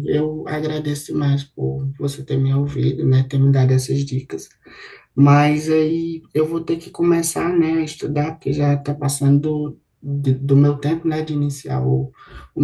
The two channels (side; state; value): both; identical; correlation 1.00